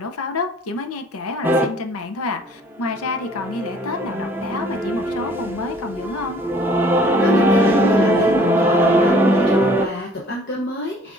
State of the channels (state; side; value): normal; both; correlation 0.55